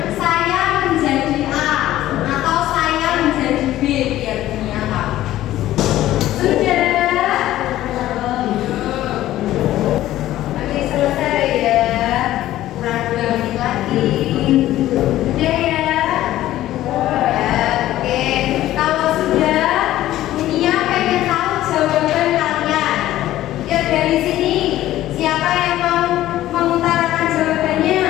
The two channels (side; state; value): right; quieter; 14.3 dB